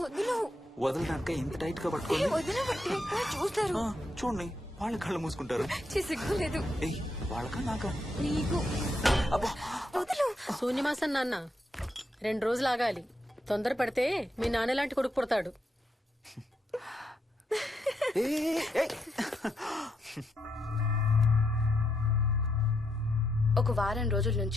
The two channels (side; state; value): both; normal; correlation 0.80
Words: వదులు వదలడానిక ఇంత టైట్ గా పట్టుకోండి. వదిన చూస్తారు. చూడండి వాళ్ళ కళ్ళు మూసుకుంటారు. సిగ్గులేదు ఏయ్ వాళ్ళకా నాకా? నీకు. అబ్బా వదులు. శూన్యమాసం నాన్న 2 రోజులు ఆగాలి. తొందర పడితే మీ నాన్న లాంటి కొడుకు పుడతాడు. ఒక వారం రోజుల